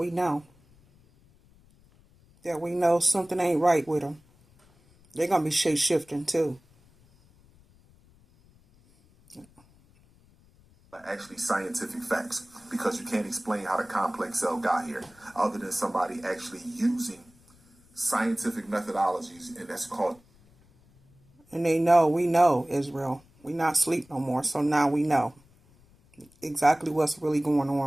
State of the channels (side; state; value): left; noise; rumble, 29 dB below the sound